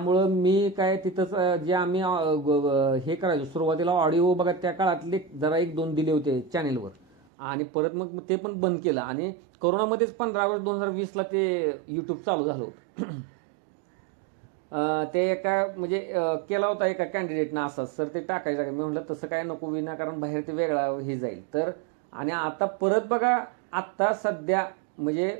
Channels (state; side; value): drops out; left; at 7.2 s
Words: मी काय तिथंच जे आम्ही हे करायचो सुरुवातीला ऑडिओ बघा, त्या काळातले जरा 1-2 दिले होते चॅनेलवर आणि परत मग ते पण बंद केलं. आणि कोरोनामध्येच 15 ऑगस्ट 2020ला ते युट्यूब चालू झालं होतं. ते एका म्हणजे केला होता एका कॅन्डिडेटनं असा, सर ते टाकायचं. मी म्हटलं तसं काय नको, विनाकारण बाहेर ते वेगळा हे जाईल. तर आणि आता परत बघा, आता सध्या म्हणजे